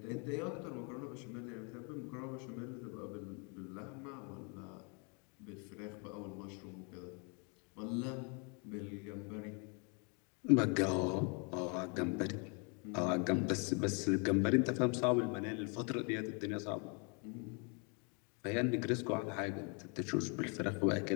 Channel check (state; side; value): quieter; right; 35.8 dB